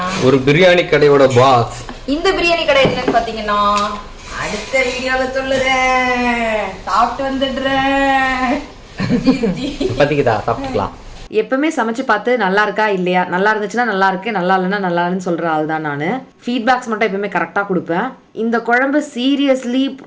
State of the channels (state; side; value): identical; both; correlation 1.00